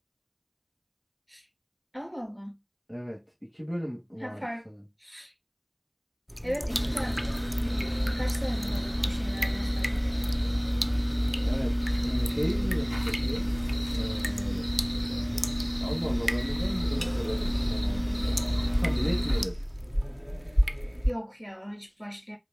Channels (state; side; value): identical; both; correlation 1.00